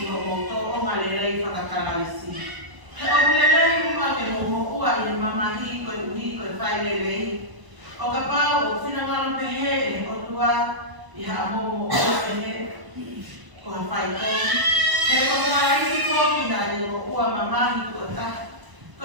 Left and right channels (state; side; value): late; left; 1.0 ms